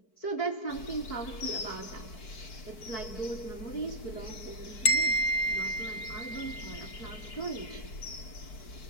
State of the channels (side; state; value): right; late; 4.6 ms